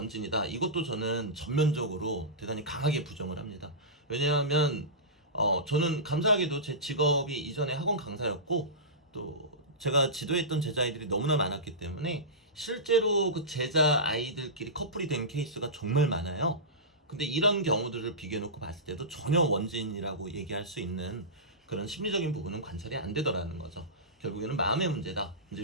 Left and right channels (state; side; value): normal; both; correlation -0.18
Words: 이것도 저는 전면적으로 대단히 강하게 부정을 합니다. 왜냐하면 저는 감사하게도 제 직업이 이전에 학원 강사였고, 또 제가 지도했던 제자아이들이 너무나 많았기 때문에 실제로 그 제자 아이들끼리 커플이 된 케이스가 정말 많아요. 근데 이런 경우들을 비교해놓고 봤을 때도 전혀 원진이라고 얘기할 수 있는 그런 심리적인 부분은 관찰이 안 되더라는 거죠. 결국에는 마음의 문제다, 이제